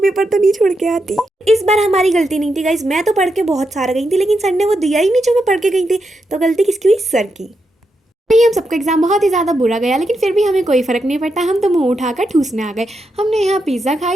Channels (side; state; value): both; normal; correlation 0.84